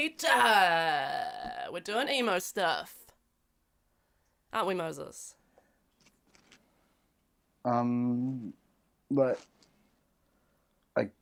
We're doing emo stuff. Aren't we, Moses? But I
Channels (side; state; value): both; identical; correlation 1.00